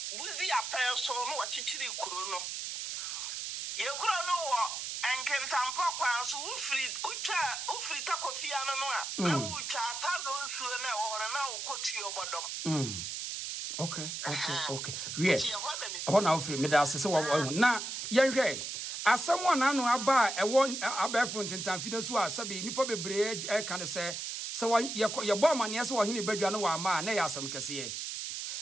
buzi apel so no wachichiri kuro no. Ye kuro no wo enkentampo kwa so ufri takofia no no a ucha ta no nsuo na wo hore na ukotu obodom. Okay. Wie. Ho na ufri me da asese wo na yenhwe asem ona no aba ewo abefo ntentamfi da so a sabe nipa bebre ka ne se ye bo amane se wo hene badwa no wa ma na ya asem kese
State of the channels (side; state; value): right; noise; hiss, 5 dB below the sound